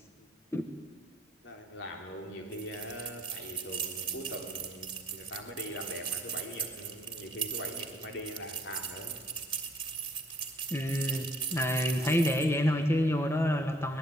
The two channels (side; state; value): both; normal; correlation 0.62